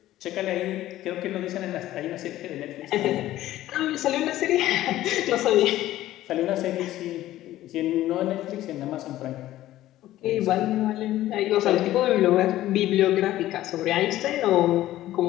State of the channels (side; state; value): right; quieter; 14.5 dB